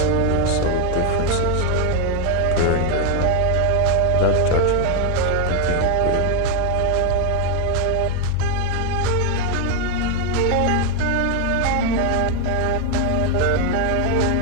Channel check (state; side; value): different; both; correlation 0.00